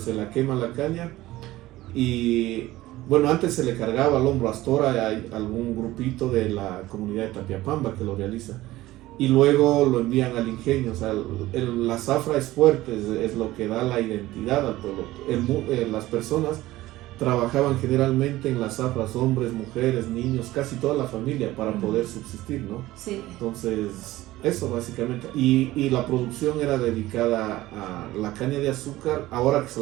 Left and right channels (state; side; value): quieter; left; 16.9 dB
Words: la quema la caña y bueno, antes se le cargaba al hombro Astora, hay algún grupito de la comunidad de Tapiapamba que lo realiza y luego lo envían al ingenio. O sea, la zafra es fuerte, es lo que da la identidad al pueblo. Las personas trabajaban generalmente en las zafras, hombres, mujeres, niños, casi toda la familia para poder subsistir, ¿no? Sí. Entonces, eso básicamente. Y la producción era dedicada a la caña de azúcar, ahora que se